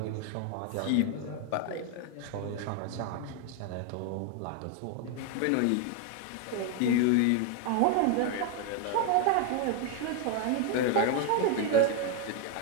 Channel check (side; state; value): both; different; correlation 0.00